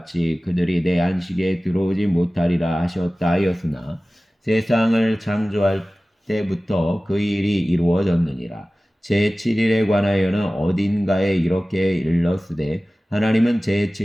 그들이 내 안식에 들어오지 못하리라 하셨다 하였으나, 세상을 창조할 때부터 그 일이 이루어졌느니라. 제7일에 관하여는 어딘가에 이렇게 일렀으되, 하나님은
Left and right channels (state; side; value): normal; both; correlation 0.97